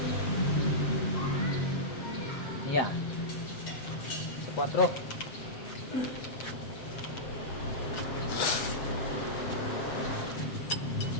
Yan. Sa 4.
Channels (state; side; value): late; right; 8.2 ms